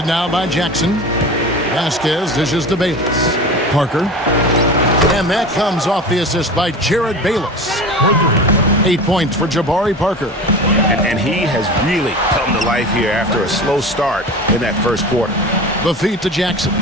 now by Jackson. Vasquez dishes to Bayless. Parker. And that comes off the assist by Jared Bayless. 8 points for Jabari Parker. And he has really come to life here after a slow start in that first quarter. The feed to Jackson.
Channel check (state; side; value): normal; both; correlation 0.32